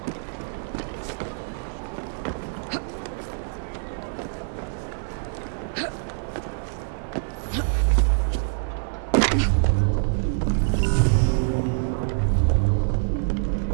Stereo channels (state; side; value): silent; left; digital silence